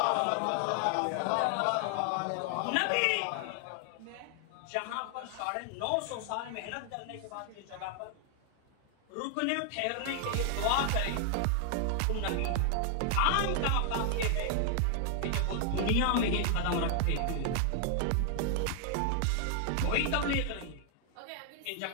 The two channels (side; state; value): both; different; correlation 0.00